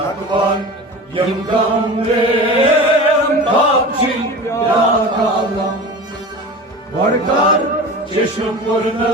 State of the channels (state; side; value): normal; both; correlation 0.33